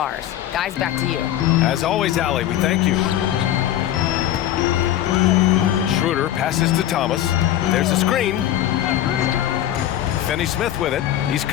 Guys, back to you. As always, Allie, we thank you. Schroeder passes to Thomas. There's a screen. Finney-Smith with it. He's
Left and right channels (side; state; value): right; quieter; 12.2 dB